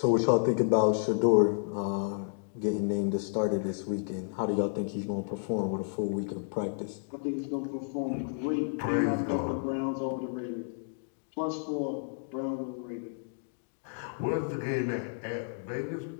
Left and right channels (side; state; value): right; silent; digital silence